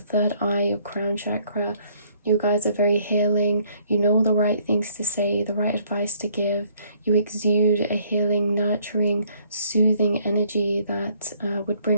third eye, your crown chakra. You guys are very healing. You know the right things to say, the right advice to give. You exude a healing, nurturing, soothing energy that would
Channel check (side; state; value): both; inverted; correlation -0.63